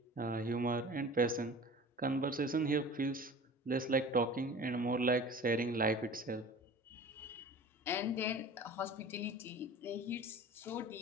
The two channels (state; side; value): normal; both; correlation 0.40